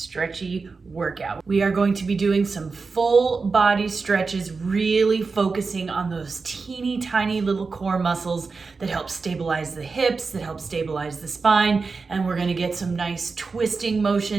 workout. We are going to be doing some full body stretches, really focusing on those teeny tiny little core muscles that help stabilize the hips, that help stabilize the spine, and we're going to get some nice twisting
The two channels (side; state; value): left; quieter; 4.4 dB